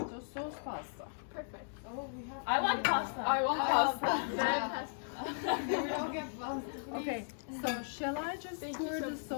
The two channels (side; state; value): right; silent; digital silence